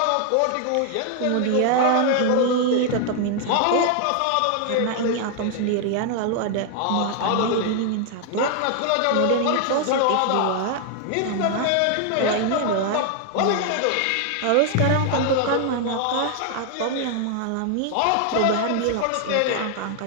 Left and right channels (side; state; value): both; different; correlation 0.00